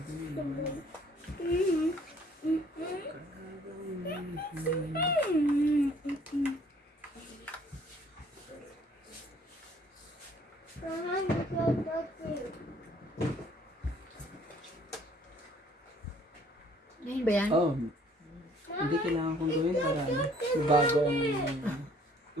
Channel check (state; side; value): normal; both; correlation 0.59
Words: Ngayon ba yan? Oh, hindi kailangan kong gawin para ano, bago ang